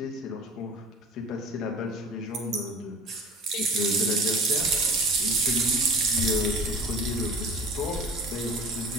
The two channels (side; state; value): both; normal; correlation 0.40